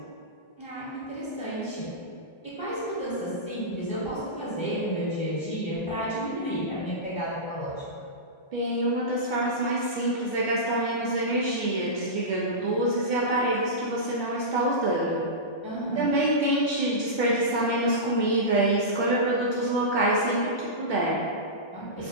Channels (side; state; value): right; late; 1.3 ms